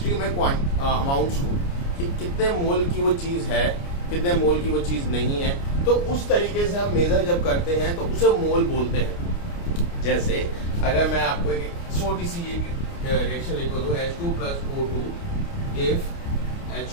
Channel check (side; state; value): right; late; 29 ms